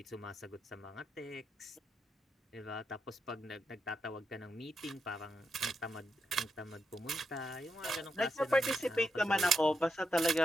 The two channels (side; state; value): both; normal; correlation 0.83